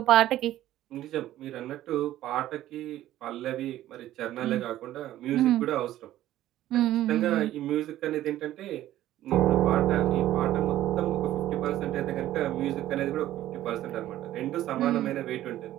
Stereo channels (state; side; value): quieter; left; 13.8 dB